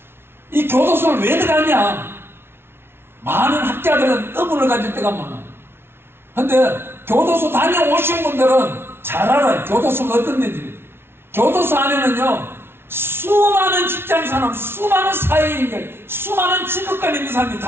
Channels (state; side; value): late; left; 0.12 ms